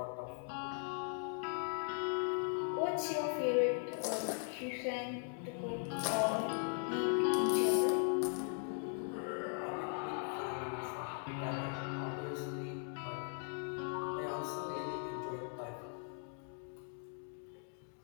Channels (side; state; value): right; silent; 52 dB below the other